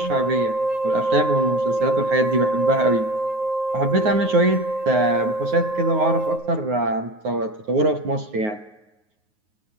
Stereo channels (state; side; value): late; left; 9.5 ms